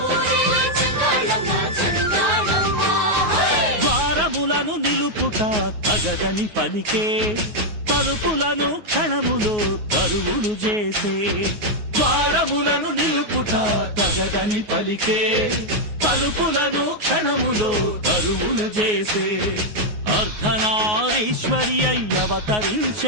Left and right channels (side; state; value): left; late; 9.5 ms